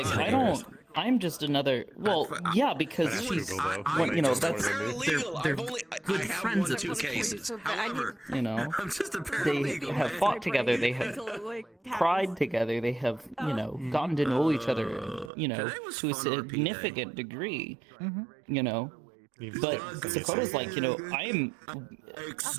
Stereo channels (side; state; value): left; drops out; at 15.3 s